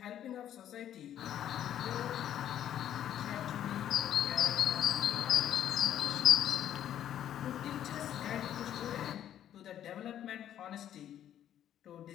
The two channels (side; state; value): right; quieter; 10.8 dB